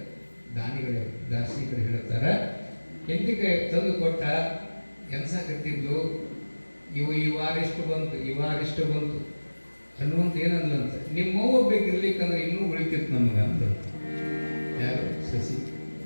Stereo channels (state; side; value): inverted; both; correlation -1.00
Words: ದಾರ್ಶನಿಕರು ಹೇಳ್ತಾರೆ. ಹೆಂಡತಿ ಕೈ ತಂದು ಕೊಟ್ಟ, ಎನ್ಸಾಕತ್ತಿದ್ಲು. ಈ ವಾರ ಇಷ್ಟು ಬಂತು ಅನ್ನುವಂತ ಏನಂದ್ಲಂತ, ನಿಮ್ಮವ್ವ ಬೇಕಿರ್ಲಿಕ್ಕಂದ್ರೆ ಇನ್ನೂ ಉಳಿತಿತ್ತು ನಮಗೆ ಅಂತಂತ. ಯಾರು? ಸಸಿ.